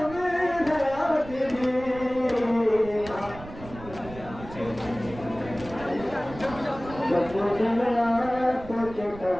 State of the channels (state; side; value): noise; right; rumble, 15 dB below the sound